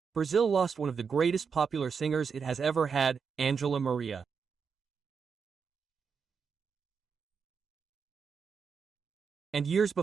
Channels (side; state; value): left; quieter; 6.0 dB